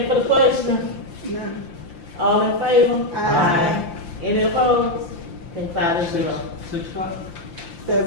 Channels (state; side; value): late; right; 5.8 ms